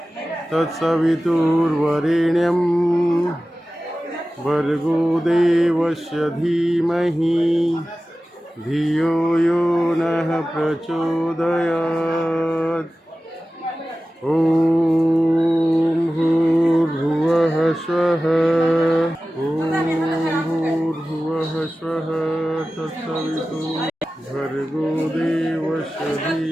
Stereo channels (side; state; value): both; normal; correlation 0.95